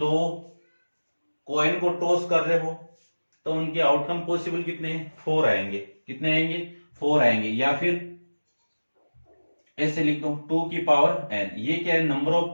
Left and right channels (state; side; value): inverted; both; correlation -1.00